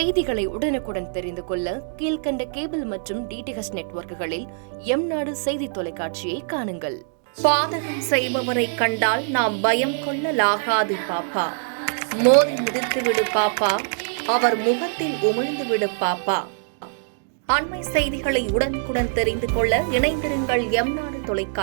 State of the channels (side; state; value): left; silent; digital silence